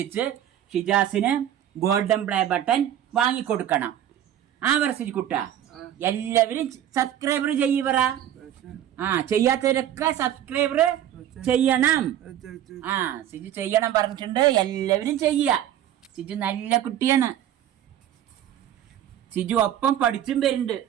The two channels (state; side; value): quieter; left; 11.1 dB